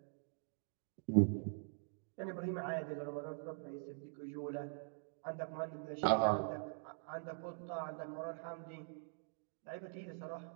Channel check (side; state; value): left; silent; digital silence